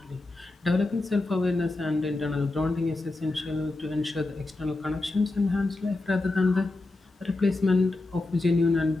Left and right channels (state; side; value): quieter; right; 3.0 dB